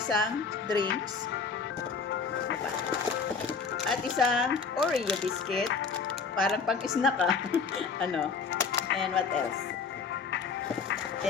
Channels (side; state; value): right; quieter; 5.3 dB